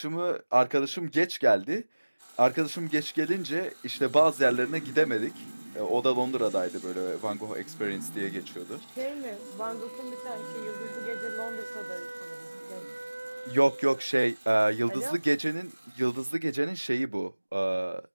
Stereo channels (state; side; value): inverted; both; correlation -1.00